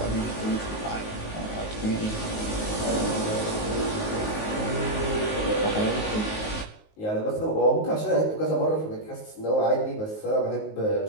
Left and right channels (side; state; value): right; late; 19 ms